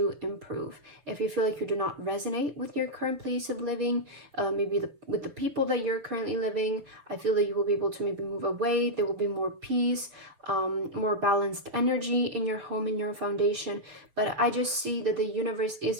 improve. If you feel like you do not resonate with your current place of living, maybe with the people that you're currently living, I feel that you will be able to maybe move away. There will be more peace, more balanced energy in your home, in your foundation. But I just see that the universe is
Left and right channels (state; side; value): late; left; 6.8 ms